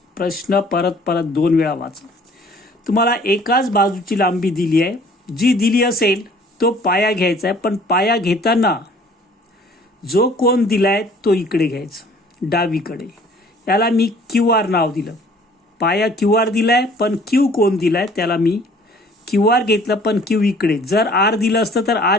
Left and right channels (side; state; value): both; normal; correlation 0.54